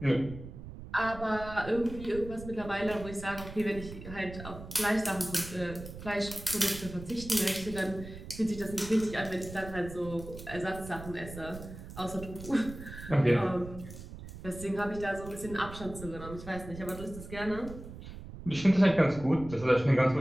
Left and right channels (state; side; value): noise; right; rumble, 13 dB below the sound